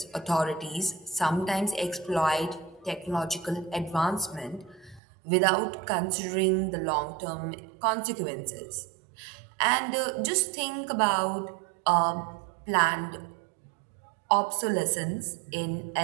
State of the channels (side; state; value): left; drops out; at 5.0 s